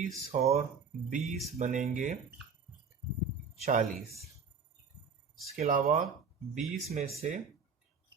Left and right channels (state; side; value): quieter; left; 5.3 dB